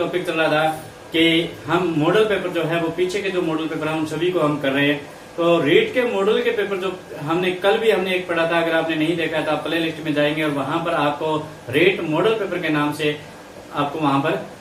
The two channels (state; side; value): identical; both; correlation 1.00